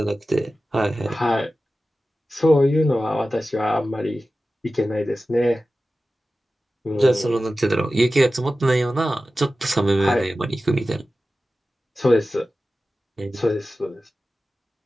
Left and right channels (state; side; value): normal; both; correlation 0.95